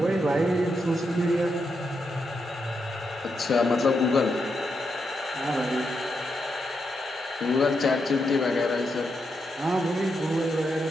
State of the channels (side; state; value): both; normal; correlation 0.83